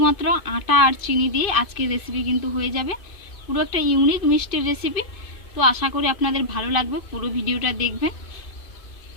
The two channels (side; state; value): right; late; 2.5 ms